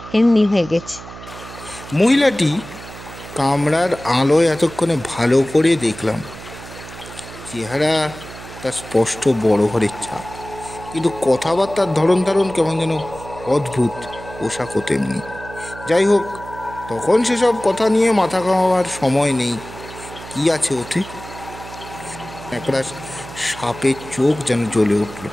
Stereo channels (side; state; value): right; noise; hum, 15 dB below the sound